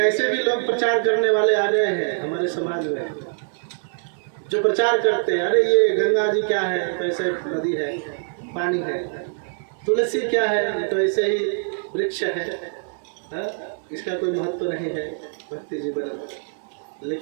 भी लोग प्रचार करने वाले आ गए हैं हमारे समाज में, जो प्रचार करते हैं अरे ये गंगा जी क्या है, तो ऐसे नदी है, पानी है। तुलसी क्या है, ये तो ऐसे ही वृक्ष है, इसका कोई महत्व नहीं है भक्ति जीवन।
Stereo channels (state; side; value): silent; left; digital silence